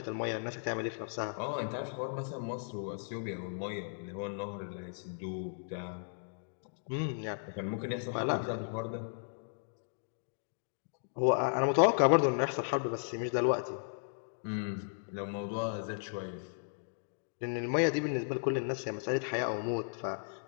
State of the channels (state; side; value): silent; right; digital silence